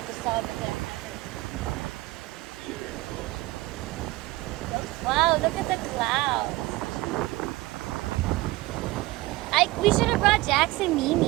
just saw over there. Wow, look at the clouds. We should have brought Jax and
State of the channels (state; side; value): quieter; left; 20.0 dB